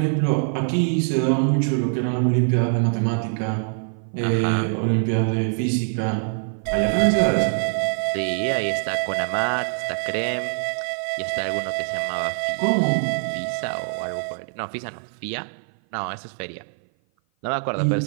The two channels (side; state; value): left; silent; 56 dB below the other